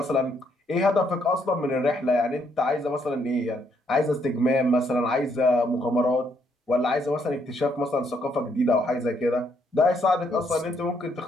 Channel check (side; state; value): both; normal; correlation 0.72